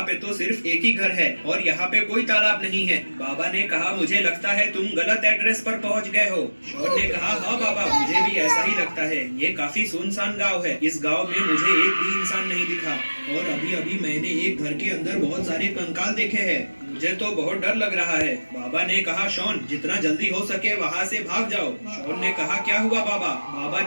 पे तो सिर्फ एक ही घर है और यहाँ पे कोई तालाब नहीं है। बाबा ने कहा, मुझे लगता है तुम गलत एड्रेस पर पहुँच गए हो। शॉन ने कहा, हाँ बाबा मुझे भी ऐसा ही लगता है, ये काफी सुनसान गाँव है, इस गाँव में मुझे एक भी इंसान नहीं दिखा और अभी अभी मैंने एक घर के अंदर बहुत सारे कंकाल देखे हैं, मुझे तो बहुत डर लग रहा है। बाबा ने कहा, शॉन जितना जल्दी हो सके वहाँ से भाग जाओ। शॉन ने कहा, क्या हुआ बाबा? बाबा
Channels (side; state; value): both; inverted; correlation -1.00